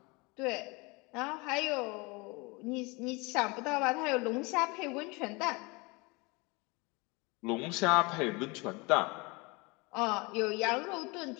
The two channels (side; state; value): right; quieter; 26.9 dB